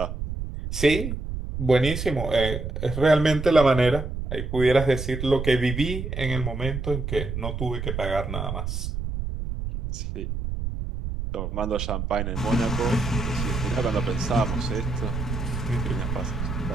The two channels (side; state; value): right; noise; rumble, 4 dB below the sound